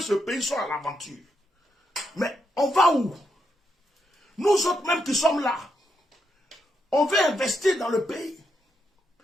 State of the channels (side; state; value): both; normal; correlation 0.81